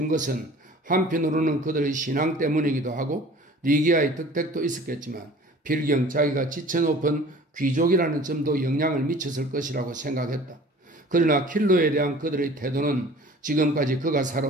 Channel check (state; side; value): normal; both; correlation 0.46